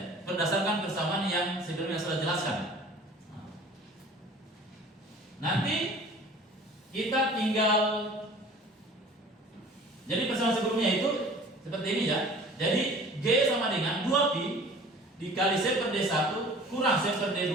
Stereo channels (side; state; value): both; normal; correlation 0.46